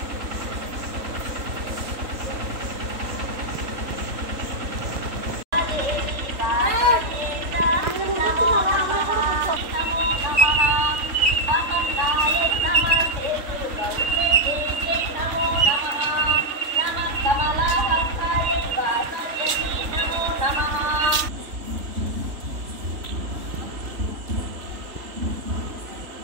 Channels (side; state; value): left; late; 3.5 ms